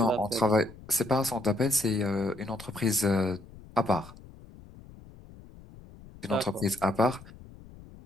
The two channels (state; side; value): noise; left; rumble, 20 dB below the sound